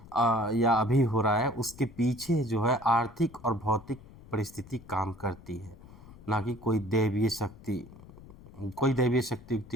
या अभी हो रहा है, उसके पीछे जो है आर्थिक और भौतिक परिस्थिति काम करती है, ना कि कोई दैवीय शक्ति। कोई दैवीय शक्ति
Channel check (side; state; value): left; noise; rumble, 20 dB below the sound